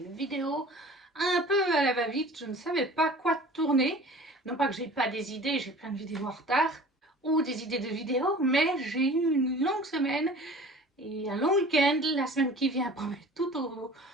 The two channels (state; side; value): normal; both; correlation 0.43